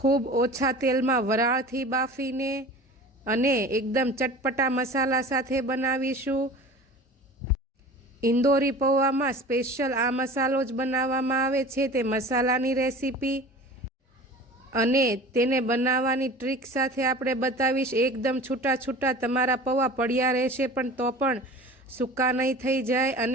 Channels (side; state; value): both; normal; correlation 0.39